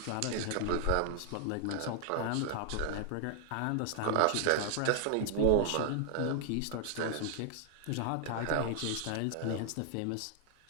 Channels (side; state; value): both; different; correlation 0.00